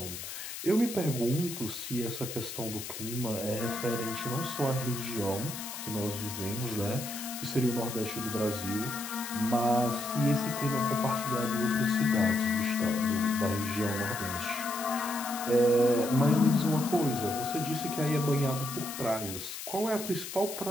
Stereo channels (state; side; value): noise; left; hiss, 8 dB below the sound